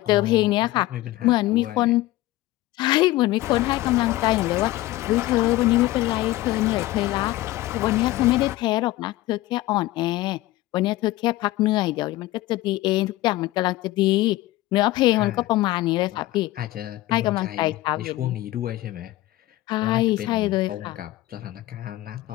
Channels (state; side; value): quieter; right; 17.1 dB